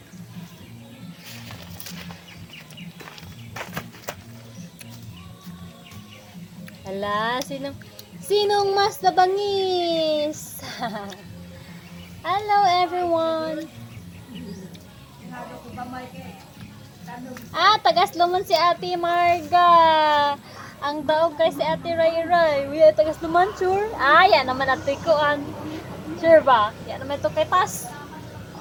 Hala, sinong mas nabangis? Hello everyone. Tagasluman si Ate Marga. Ang daog kay si Ate Ray Ray. Uy, tagasluman sure. Yan naman ate ko an. Sure ba? Yan naman ito kay Tas.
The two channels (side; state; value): both; identical; correlation 1.00